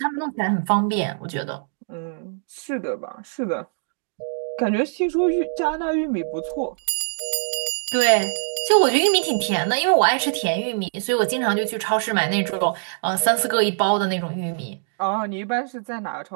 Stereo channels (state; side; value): silent; left; digital silence